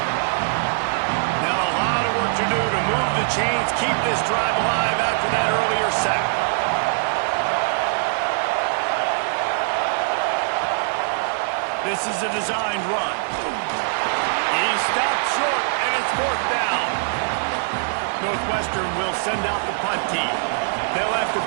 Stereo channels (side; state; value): left; silent; 56 dB below the other